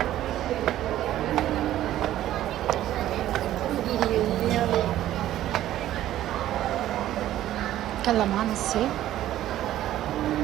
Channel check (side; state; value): left; quieter; 13.2 dB